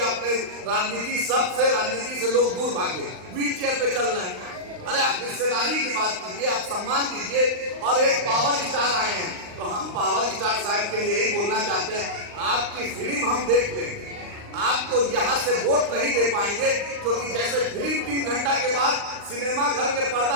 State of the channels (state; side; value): late; left; 39 ms